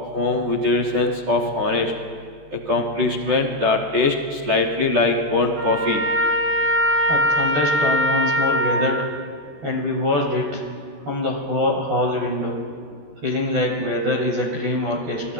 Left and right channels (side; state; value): left; late; 14 ms